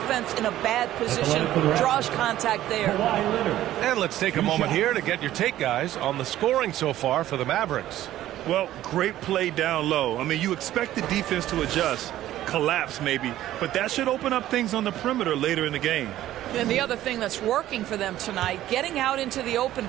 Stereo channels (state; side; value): quieter; left; 13.6 dB